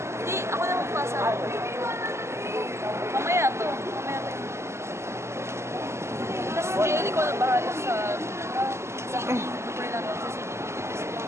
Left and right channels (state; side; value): late; left; 0.13 ms